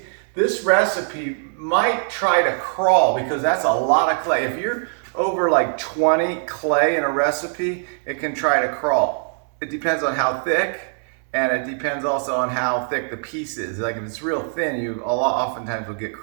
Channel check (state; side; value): silent; left; 64 dB below the other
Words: this recipe might try to crawl because that's a lot of clay. If you're over like 20 clay in a recipe, it can try to crawl. It depends on how thick. And it depends also on how thick the piece is. Like if it's real thin, you oftentimes will get